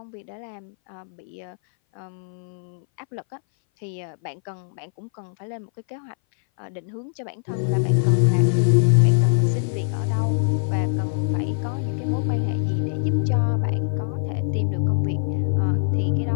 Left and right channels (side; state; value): right; silent; 59 dB below the other